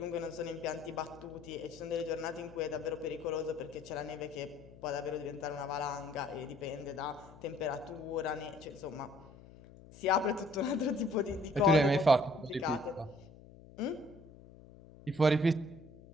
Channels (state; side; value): noise; left; hum, 20 dB below the sound